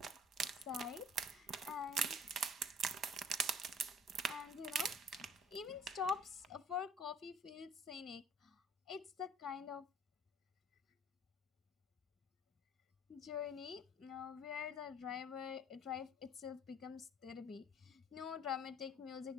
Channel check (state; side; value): normal; both; correlation 0.53